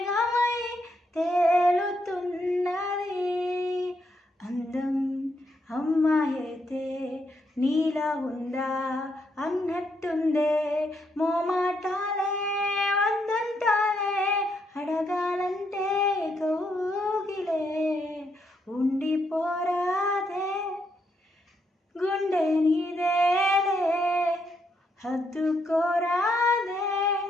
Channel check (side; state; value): both; normal; correlation 0.77